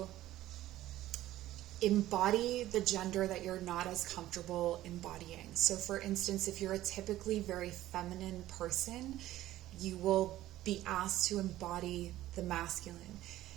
embody the gender that you're not as comfortable embodying. So for instance, if you're a typically very feminine person, you will be asked to embody the masculine.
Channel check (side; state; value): left; quieter; 14.7 dB